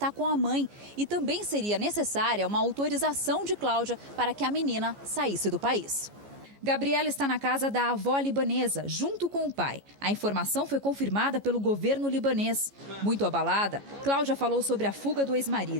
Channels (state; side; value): late; left; 14 ms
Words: com a mãe e também seria necessária uma autorização de Cláudia para que a menina saísse do país. Gabriela está na casa da avó libanesa, junto com o pai. A informação foi confirmada pelo governo libanês. Muito abalada, Cláudia falou sobre a fuga do